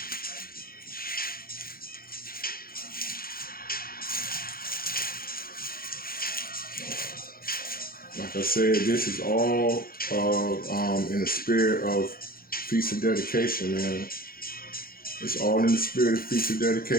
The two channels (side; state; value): right; late; 0.43 ms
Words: like I said, this is all in the spirit of Feast of Dedication, man. It's all in the spirit of Feast of